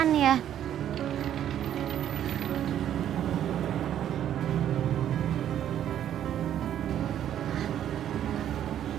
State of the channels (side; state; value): left; quieter; 10.7 dB